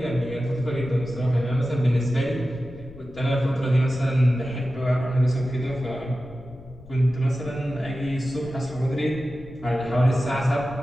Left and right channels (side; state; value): left; noise; rumble, 19 dB below the sound